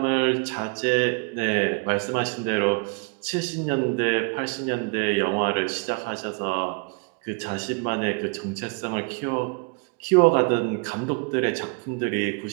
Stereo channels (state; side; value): quieter; left; 31.9 dB